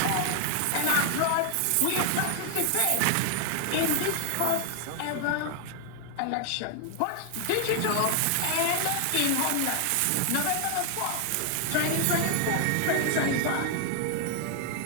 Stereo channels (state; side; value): different; both; correlation 0.00